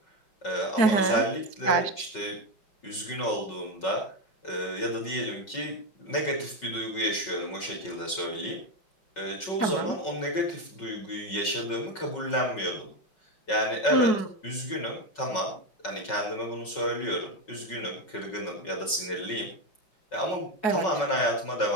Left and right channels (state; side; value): late; right; 5.4 ms